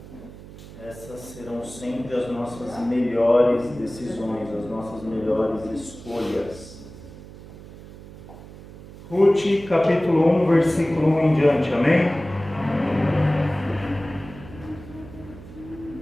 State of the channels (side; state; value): right; noise; hum, 17 dB below the sound